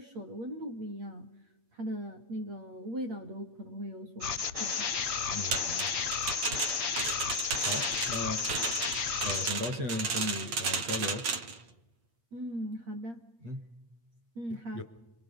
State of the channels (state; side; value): late; left; 8.6 ms